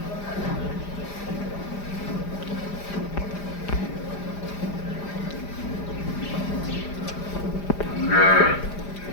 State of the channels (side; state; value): right; late; 5.0 ms